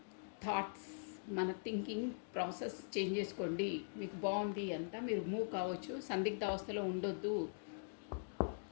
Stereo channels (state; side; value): silent; right; digital silence